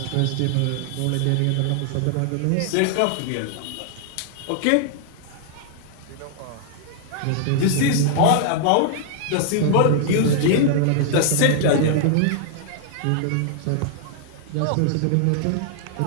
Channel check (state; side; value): different; both; correlation -0.01